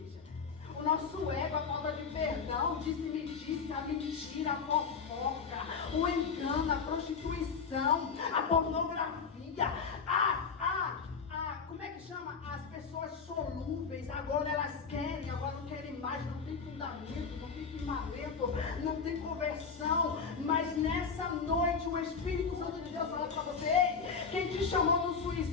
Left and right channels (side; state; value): right; quieter; 5.6 dB